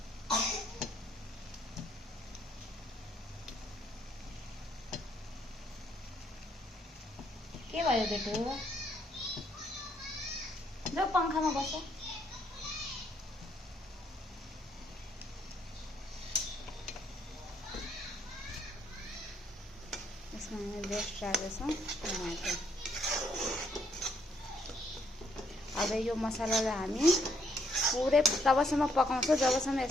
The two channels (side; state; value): both; normal; correlation 0.71